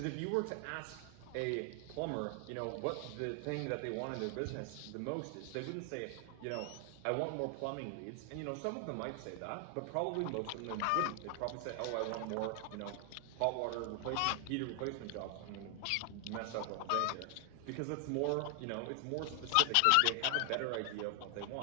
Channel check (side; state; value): both; different; correlation 0.00